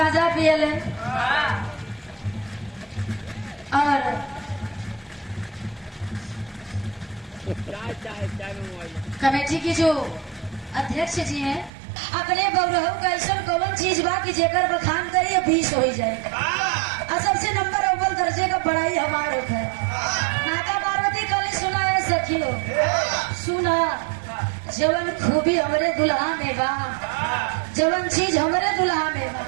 पियले। और कमेटी की जो अध्यक्ष जी हैं, अपने बौरहू का ऐसा कौन चीज बा कि जेकर बखान करिए 20 हो जाए। और सबसे नंबर अव्वल दर्जे का पढ़ाई हमारे है। माता पार्वती कल सुना है सखियो, सुना जवन खूबी हमरे दुल्हा में बा, जवन चीज हमरे दुल्हा में बा,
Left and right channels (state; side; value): drops out; left; at 11.7 s